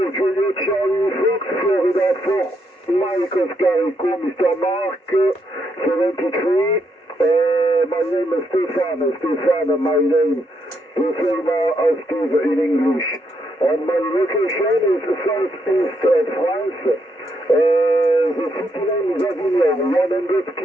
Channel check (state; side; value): normal; both; correlation 0.77